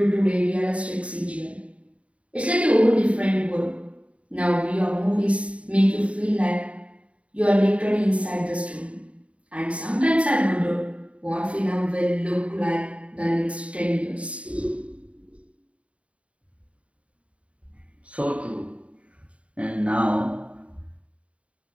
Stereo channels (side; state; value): left; late; 0.063 ms